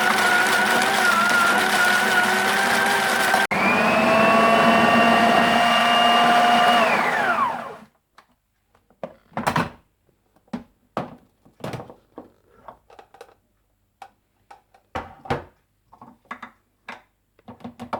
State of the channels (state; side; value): identical; both; correlation 1.00